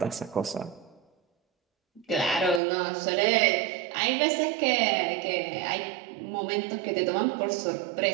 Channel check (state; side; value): drops out; left; at 2.6 s